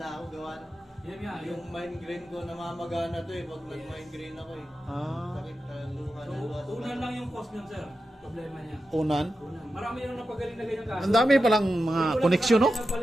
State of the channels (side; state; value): both; normal; correlation 0.90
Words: ako gawa. Yan nga, Yung migraine ko namamagana to eh, pag nag-migraine ako eh. Ah, Sakit luha So, na luha. unan lang yung cost niyan sir. Problema niya. unan. Unan. Marami yung napagaling na ganyan kaso. Ang dami palang mga koneksyon, no?